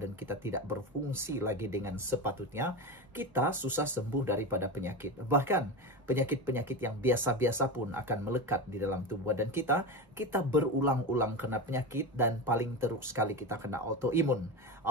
kita tidak berfungsi lagi dengan sepatutnya, kita susah sembuh daripada penyakit. Bahkan penyakit-penyakit yang biasa-biasa pun akan melekat di dalam tubuh badan kita. Kita berulang-ulang kena penyakit dan paling teruk sekali kita kena autoimun.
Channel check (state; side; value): normal; both; correlation 0.21